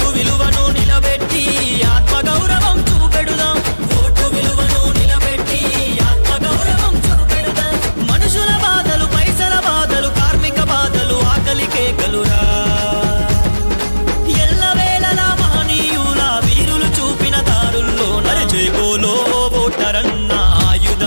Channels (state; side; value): inverted; both; correlation -1.00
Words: విలువను నిలబెట్టి ఆత్మగౌరవం చూపెడుదాం ఓటు విలువను నిలబెట్టి ఆత్మగౌరవం చూపెడుదాం మనుషుల బాధలు పైసల బాధలు కార్మిక బాధలు ఆకలి కేకలురా ఎల్లవేళలా మహనీయుల వీరులు చూపిన దారుల్లో జై బోలో ఓటరన్న